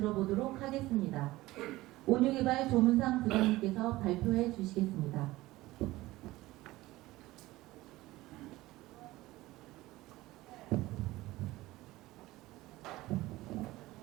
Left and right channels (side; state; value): left; quieter; 18.3 dB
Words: 하겠습니다. 온유개발 조문상 부장님께서 발표해 주시겠습니다.